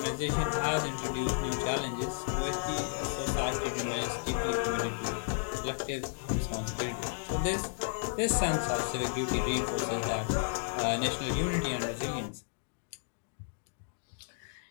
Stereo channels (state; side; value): silent; right; digital silence